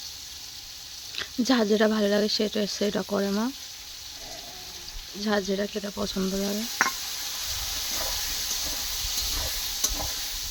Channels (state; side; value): identical; both; correlation 1.00